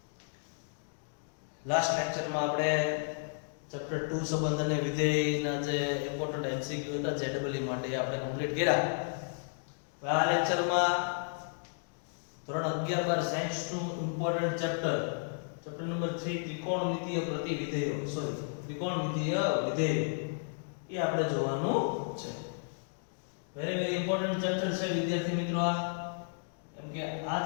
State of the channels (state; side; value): silent; right; digital silence